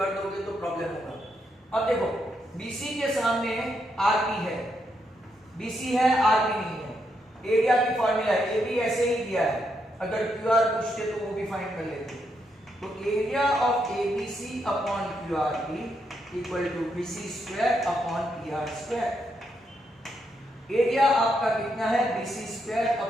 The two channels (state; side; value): normal; both; correlation 0.80